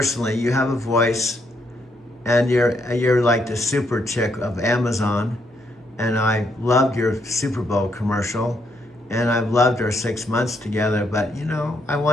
You have a voice, and you're like the super chick of Amazon. And I loved your Super Bowl commercial, and I've loved our 6 months together. But you know, I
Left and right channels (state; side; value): normal; both; correlation 0.75